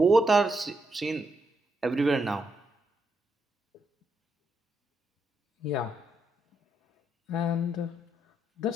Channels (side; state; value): both; normal; correlation 0.80